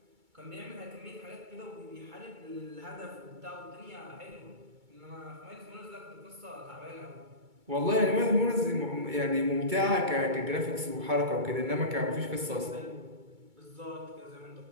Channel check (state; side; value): late; left; 2.3 ms